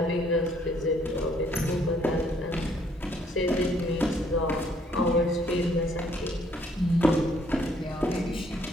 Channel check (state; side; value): normal; both; correlation 0.65